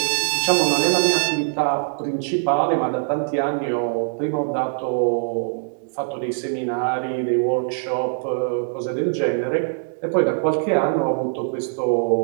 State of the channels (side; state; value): left; silent; 61 dB below the other